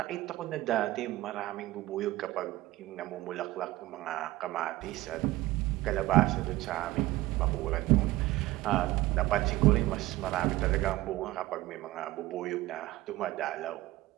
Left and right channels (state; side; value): quieter; left; 17.7 dB